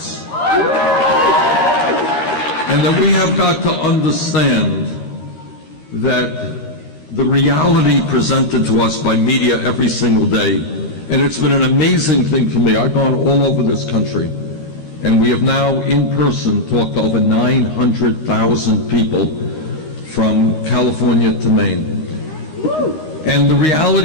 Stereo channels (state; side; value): late; right; 13 ms